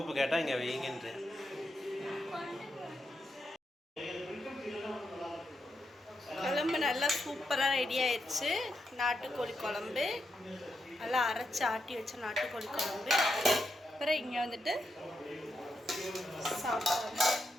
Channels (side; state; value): both; normal; correlation 0.83